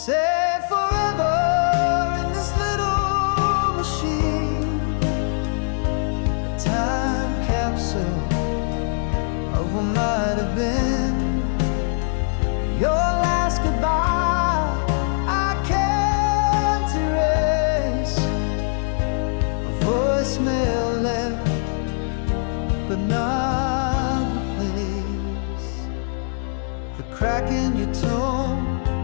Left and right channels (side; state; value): right; silent; 64 dB below the other